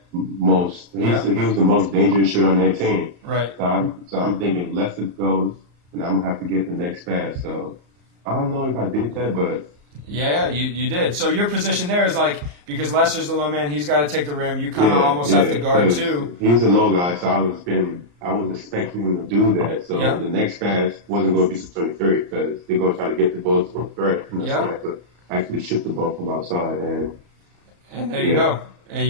He was the most dangerous shooter on that team. Right. So I'm thinking if Lester goes, and I'm gonna have to get the next pass. So I don't know if I did that, but. Yeah, you did. So your position there is like, because Lester's the low man, he's got to take the rim. You kind of almost have to guard too. He's a low guy, so I was expecting him to do that. So the next pass wasn't going to be to 23 because they're going to try to get the ball to a threat. So I could actually shoot the ball from outside. And there you go. And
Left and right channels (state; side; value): late; left; 34 ms